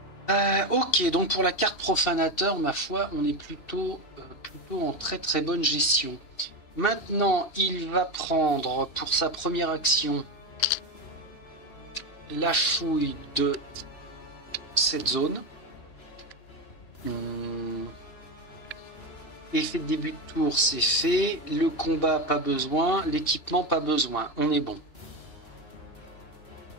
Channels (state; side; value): late; right; 2.7 ms